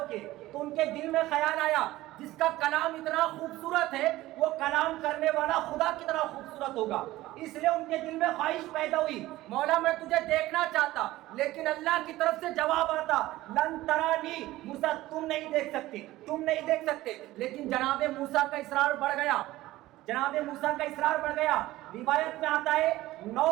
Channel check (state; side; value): quieter; left; 17.0 dB